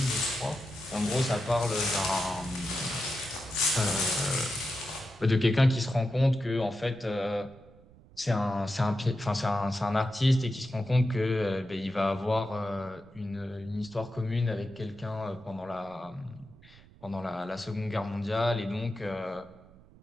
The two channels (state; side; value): noise; right; rumble, 24 dB below the sound